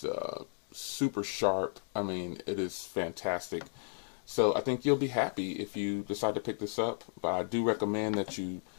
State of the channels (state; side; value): silent; right; digital silence